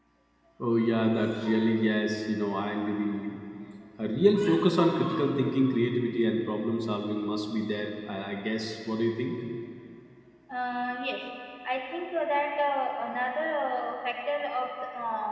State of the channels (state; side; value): identical; both; correlation 1.00